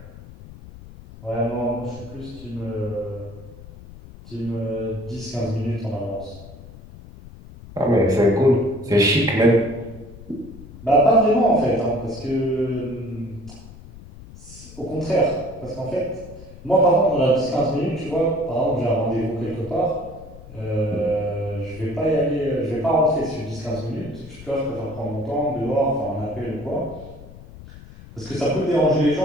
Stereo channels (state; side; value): noise; left; rumble, 17 dB below the sound